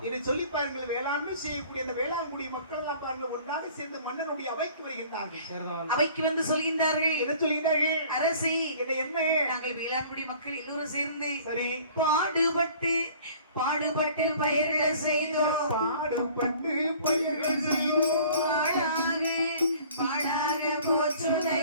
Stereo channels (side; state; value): both; inverted; correlation -0.50